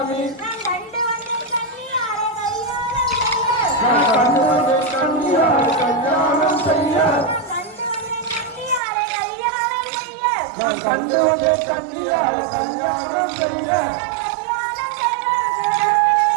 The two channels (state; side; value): drops out; left; at 8.8 s